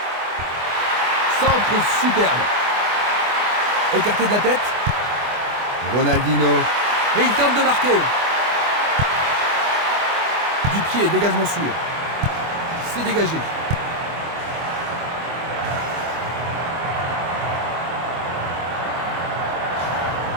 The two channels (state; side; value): late; left; 24 ms